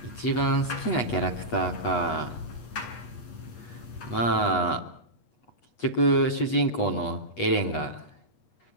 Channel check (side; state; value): right; late; 8.2 ms